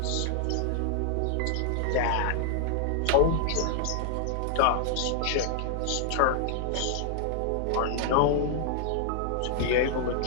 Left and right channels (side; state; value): both; different; correlation -0.01